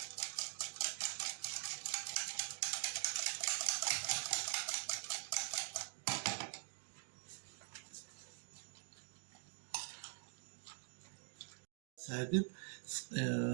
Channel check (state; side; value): silent; left; digital silence